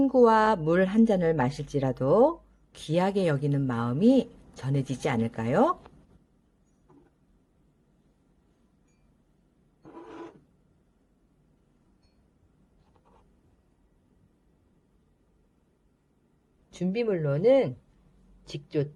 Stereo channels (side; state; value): both; identical; correlation 1.00